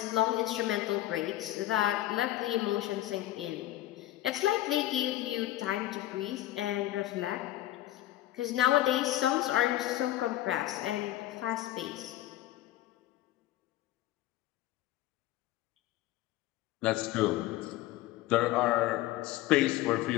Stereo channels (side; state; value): right; quieter; 14.8 dB